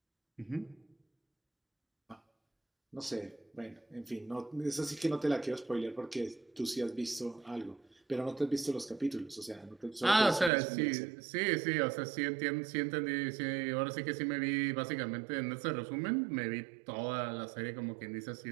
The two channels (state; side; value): drops out; left; at 10.5 s